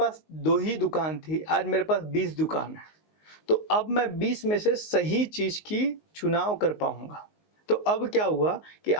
2 ही दुकान थी, आज मेरे पास 20 दुकान है। तो अब मैं 20 में से सही चीज़ की चुनाव कर पाऊँगा। तो अब क्या हुआ कि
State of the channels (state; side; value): late; right; 19 ms